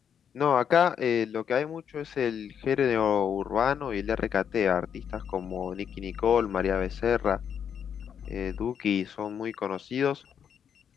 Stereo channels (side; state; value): right; quieter; 8.1 dB